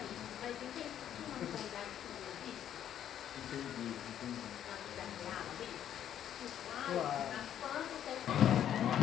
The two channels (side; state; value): right; quieter; 10.3 dB